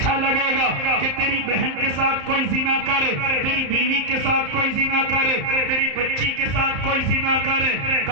لگے گا کہ تیری بہن کے ساتھ کوئی زنا کرے، تیری بیوی کے ساتھ کوئی زنا کرے، تیری بچی کے ساتھ کوئی زنا کرے؟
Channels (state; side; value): late; left; 34 ms